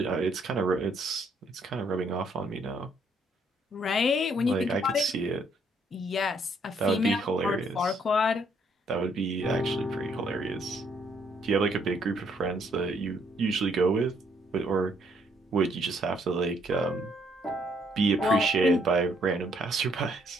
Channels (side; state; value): both; normal; correlation 0.69